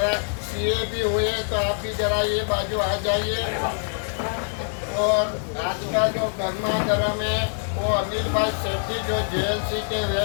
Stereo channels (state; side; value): silent; right; 62 dB below the other